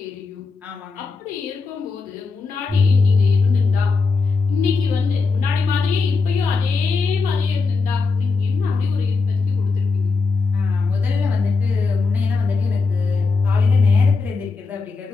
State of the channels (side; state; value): right; quieter; 4.3 dB